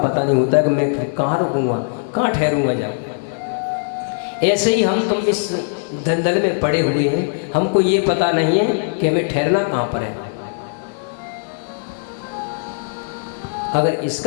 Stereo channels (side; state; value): right; silent; digital silence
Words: नहीं होता है कि मैं कहाँ रुकूंगा, कहाँ ठहरूंगा जाऊँ। ऐसे ही हम तुम इस दलदल में पड़े हुए हैं, हमको ये पता नहीं है कि हमें ठहरना कहाँ पर है। अगर